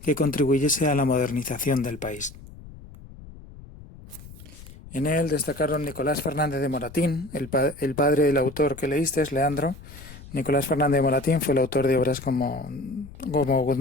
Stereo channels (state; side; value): noise; left; rumble, 17 dB below the sound